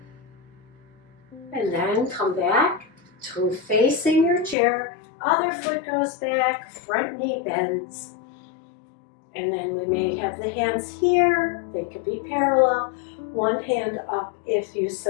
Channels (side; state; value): right; drops out; at 4.5 s